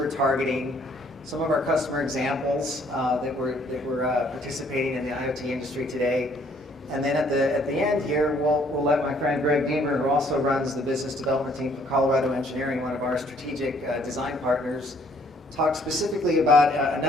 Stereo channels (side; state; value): both; normal; correlation 0.63